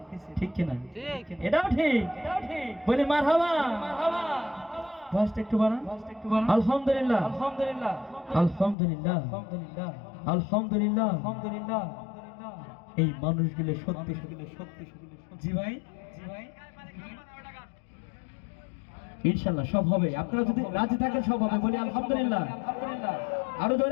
ঠিক কিনা? এটাও ঠিক। বলি মারহাবা। ভয়েসটা একটু বাড়ান। আলহামদুলিল্লাহ আলহামদুলিল্লাহ আলহামদুলিল্লাহ আলহামদুলিল্লাহ আলহামদুলিল্লাহ আলহামদুলিল্লাহ। এই মানুষগুলো সত্যি সত্যি। জি ভাই, জি ভাই, ইনশাআল্লাহ সব হবে। আপনারা যদি রাজি থাকেন সব হবে। বলি আলহামদুলিল্লাহ আলহামদুলিল্লাহ, আরো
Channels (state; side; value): drops out; right; at 8.8 s